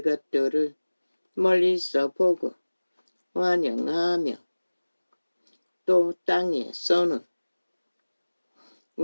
멀리서 보고 환영하며 또 땅에서는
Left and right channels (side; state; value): both; inverted; correlation -1.00